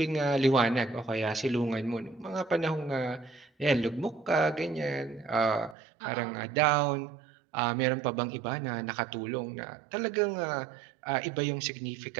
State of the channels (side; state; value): left; drops out; at 5.8 s